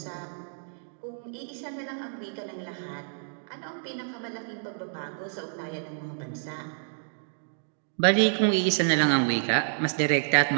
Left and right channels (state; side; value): silent; left; digital silence